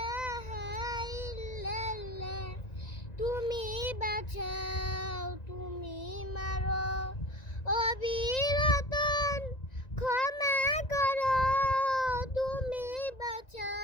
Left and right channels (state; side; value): late; right; 1.9 ms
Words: ইল্লাল্লাহ তুমি বাঁচাও তুমি মারো অবিরতন ক্ষমা করো তুমি